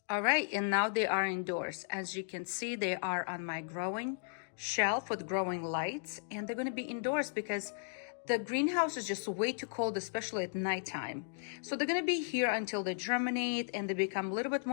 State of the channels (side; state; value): right; silent; digital silence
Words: All right, and now they are indoors. As you can see, they are on my growing shelf with growing lights, and they're gonna be indoors because the greenhouse is just way too cold, especially at nighttime. So they're gonna be here until they germinate and they become a little bit